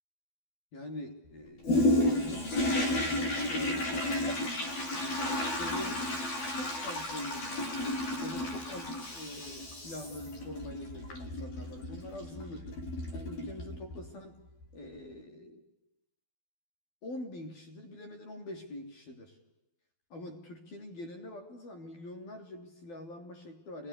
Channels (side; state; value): right; late; 12 ms